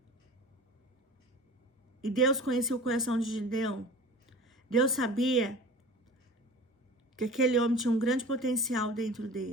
E Deus conhecia o coração de Gideão. Deus sabia que aquele homem tinha um grande potencial dentro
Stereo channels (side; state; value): both; normal; correlation 0.39